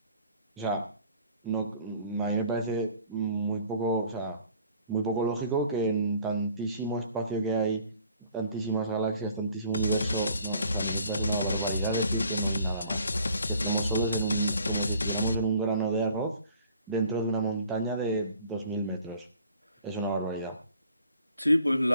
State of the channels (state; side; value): inverted; both; correlation -0.55